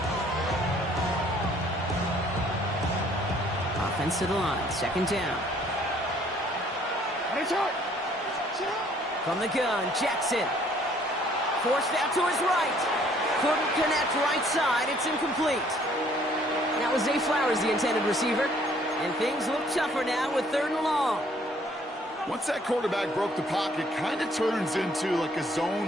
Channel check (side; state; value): both; normal; correlation 0.61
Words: Offense to the line, 2nd down. From the gun, Jackson. Forced out to his right. Couldn't connect right side. It's incomplete. That was Zay Flowers, the intended receiver. And things look tougher now with 3rd and long. Once that quarterback broke the pocket, kind of turns into like a